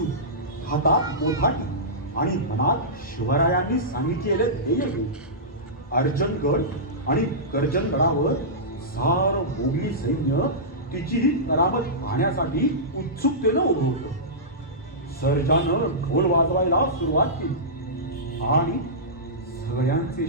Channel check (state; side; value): normal; both; correlation -0.16